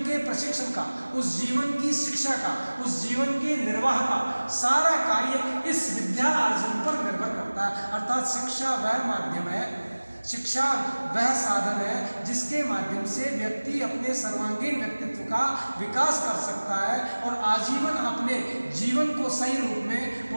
के प्रशिक्षण का, उस जीवन की शिक्षा का, उस जीवन के निर्वाह का सारा कार्य इस विद्या अर्जन पर निर्भर करता है। अर्थात शिक्षा वह माध्यम है, शिक्षा वह साधन है जिसके माध्यम से व्यक्ति अपने सर्वांगीण व्यक्तित्व का विकास कर सकता है और आजीवन अपने जीवन को सही रूप में,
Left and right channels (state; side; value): inverted; both; correlation -1.00